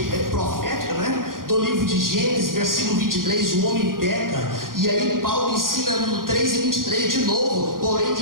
profética, né? Do livro de Gênesis, versículo 23, o homem peca. E aí Paulo ensina no 3 e 23 de novo, porém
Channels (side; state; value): left; late; 0.91 ms